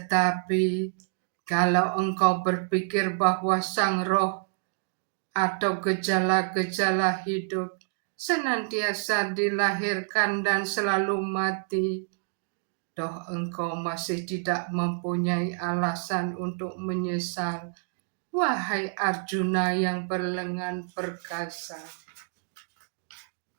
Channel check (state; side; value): silent; left; digital silence